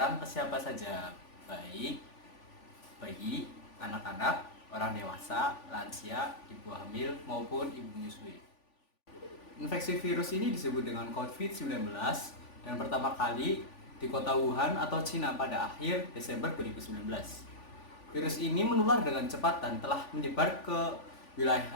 ke siapa saja, baik bayi, anak-anak, orang dewasa, lansia, ibu hamil, maupun ibu menyusui. Infeksi virus ini disebut dengan COVID-19 dan pertama kali di kota Wuhan atau Cina pada akhir Desember 2019. Virus ini menular dengan cepat dan telah menyebar ke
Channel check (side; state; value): right; late; 3.5 ms